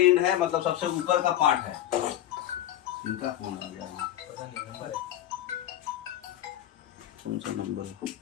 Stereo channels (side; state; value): right; quieter; 12.6 dB